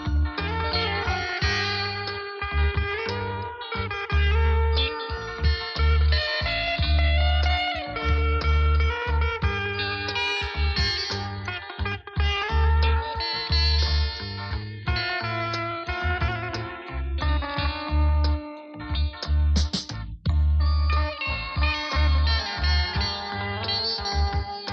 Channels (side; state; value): both; identical; correlation 1.00